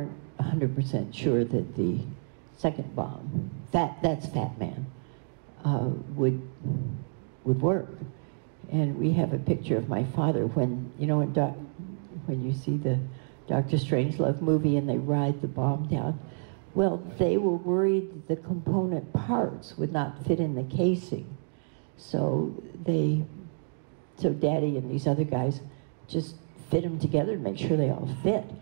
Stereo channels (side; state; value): left; silent; digital silence